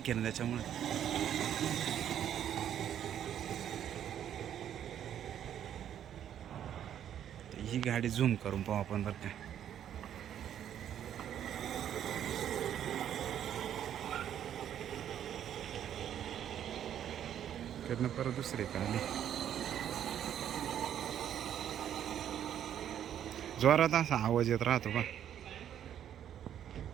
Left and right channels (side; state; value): left; quieter; 10.1 dB